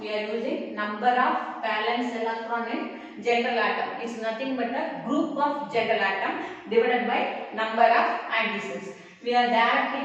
We are using number of valence electron in general atom. It's nothing but a group of general atom divided by number of additions. We are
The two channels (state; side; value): identical; both; correlation 1.00